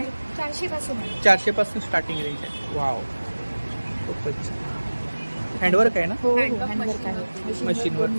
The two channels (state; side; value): inverted; both; correlation -1.00